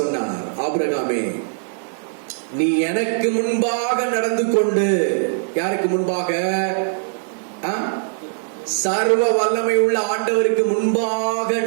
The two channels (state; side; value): silent; left; 65 dB below the other